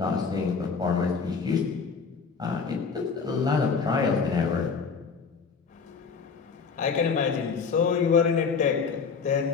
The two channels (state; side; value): quieter; right; 5.4 dB